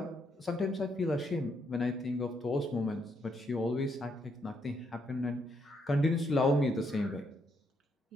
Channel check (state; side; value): normal; both; correlation 0.75